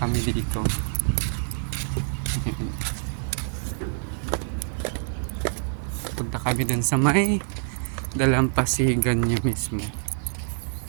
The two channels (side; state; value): left; silent; digital silence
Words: dito. Punta kami dun sa may dalampasigan niya mismo.